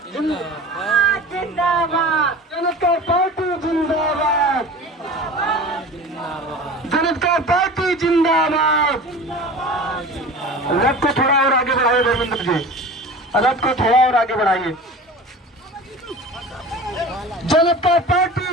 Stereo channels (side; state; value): both; normal; correlation 0.36